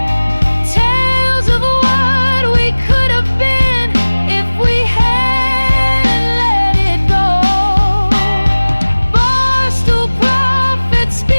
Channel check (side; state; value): both; inverted; correlation -1.00